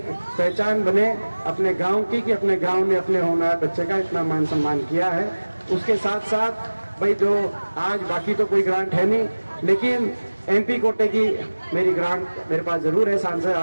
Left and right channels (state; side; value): inverted; both; correlation -1.00